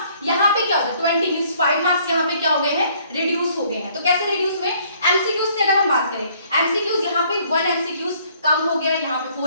यहाँ पे क्या होता है, 20 मींस 5 मार्क्स यहाँ पे क्या हो गए हैं, रिड्यूस हो गए हैं। तो कैसे रिड्यूस हुए, एमसीक्यूज से अगर हम बात करें, एमसीक्यूज यहाँ पे 1 एमसीक्यूज कम हो गया, यहाँ पे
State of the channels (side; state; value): both; inverted; correlation -0.62